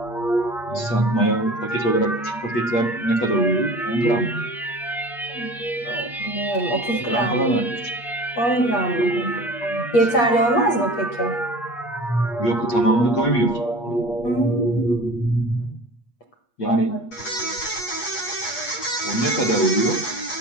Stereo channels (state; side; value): late; right; 8.4 ms